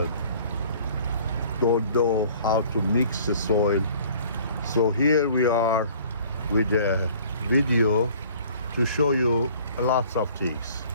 don't know how to mix the soil. So here we are with a video to show you lots of things.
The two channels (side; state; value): both; inverted; correlation -0.52